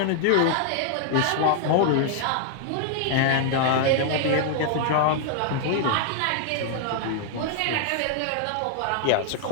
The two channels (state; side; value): different; both; correlation 0.00